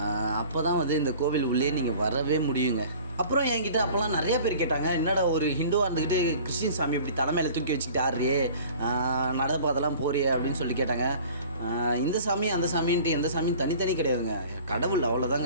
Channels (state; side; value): inverted; both; correlation -0.46